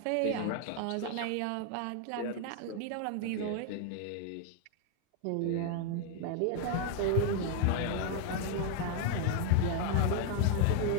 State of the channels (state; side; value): different; both; correlation 0.00